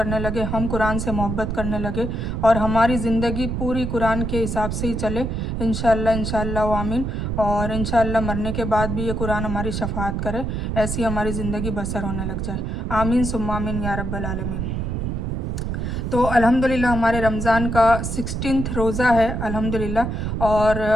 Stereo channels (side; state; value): right; noise; rumble, 2 dB below the sound